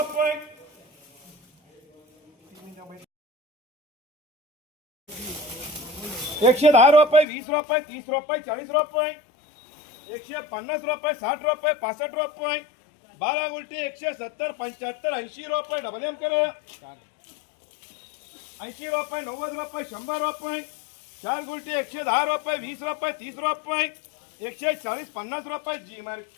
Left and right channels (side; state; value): right; drops out; at 7.2 s